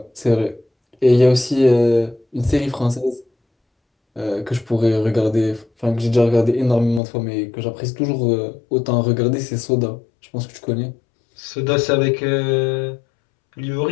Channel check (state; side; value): drops out; right; at 7.0 s